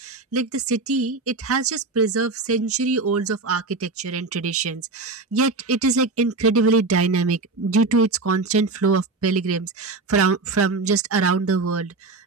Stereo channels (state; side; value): quieter; left; 3.7 dB